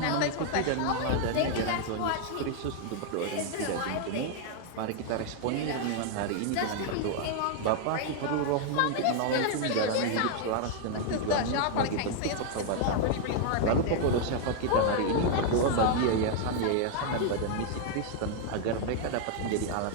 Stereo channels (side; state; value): both; different; correlation 0.00